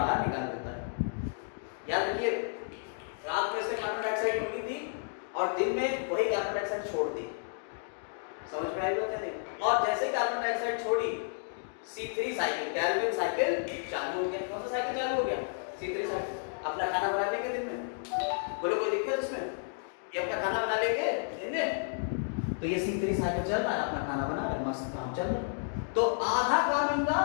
निकाल देता है। याद रखिए, रात में से कार्बन डाइऑक्साइड निकली थी और दिन में वही कार्बन डाइऑक्साइड छोड़ दी। समझ में आई बात है नहीं? और जैसे कार्बन डाइऑक्साइड छोड़ी, C3 साइकिल, कैल्विन साइकिल चालू हो गया। कौन सा साइकिल चालू हो गया? C3 cycle. अपना खाना बना लेंगे दिन में, बोलो कोई दिक्कत इसमें? ये अपना खाना बना लेंगे दिन में, तो ये C3 साइकिल चल रहा है, अपना खाना बना रहे, मस्त काम चल रहा है। तो आधा काम इनका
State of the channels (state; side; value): silent; right; digital silence